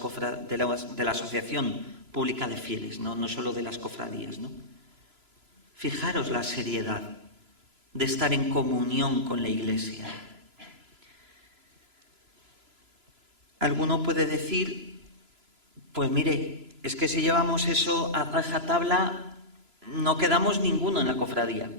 la asociación pública de fieles, no solo de las cofradías, ¿no? Fijaros la seriedad de estar en comunión con la Iglesia. Alguno puede decir, pues mire, es que si llevamos eso a rajatabla, no quedamos ninguno en la cofradía.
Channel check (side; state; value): left; late; 3.0 ms